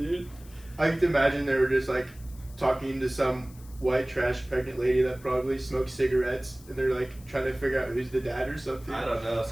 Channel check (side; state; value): left; noise; hiss, 23 dB below the sound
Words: I like to imagine they were just like talking to some white trash pregnant lady that probably smokes cigarettes, and they're like trying to figure out who's the dad or something. I don't know,